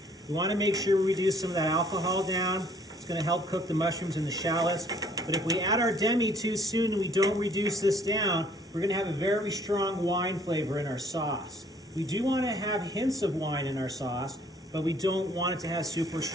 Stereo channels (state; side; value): normal; both; correlation 0.60